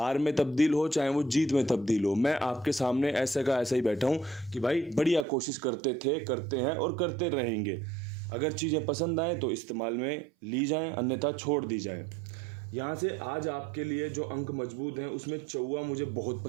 में तब्दील हो, चाहे वो जीत में तब्दील हो, मैं आपके सामने ऐसे का ऐसा ही बैठा हूँ कि भाई बढ़िया कोशिश करते थे, करते हैं और करते रहेंगे। अगर चीज़ें पसंद आएँ तो इस्तेमाल में ली जाएँ, अन्यथा छोड़ दी जाए। यहाँ से आज आपके लिए जो अंक मजबूत हैं, उसमें चौवा मुझे बहुत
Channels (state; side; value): drops out; left; at 5.2 s